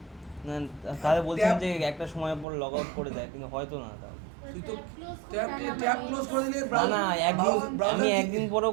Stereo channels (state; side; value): drops out; left; at 2.5 s